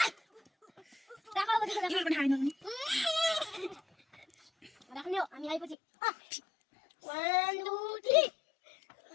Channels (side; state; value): right; drops out; at 5.8 s